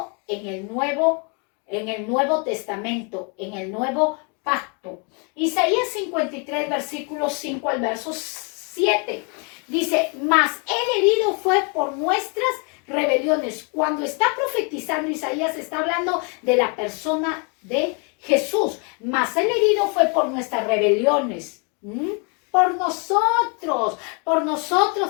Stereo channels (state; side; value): quieter; right; 35.8 dB